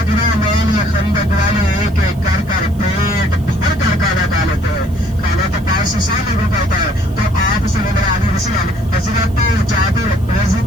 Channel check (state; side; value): noise; right; hiss, 26 dB below the sound